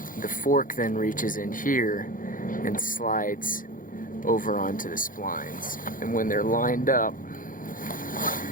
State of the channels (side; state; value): right; late; 0.39 ms